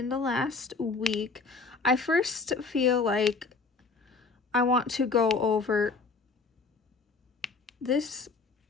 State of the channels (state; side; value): quieter; right; 4.2 dB